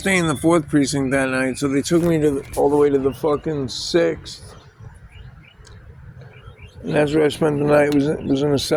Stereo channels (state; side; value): identical; both; correlation 1.00